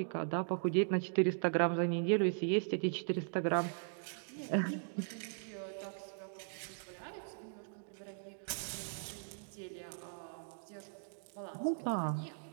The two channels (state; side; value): silent; left; digital silence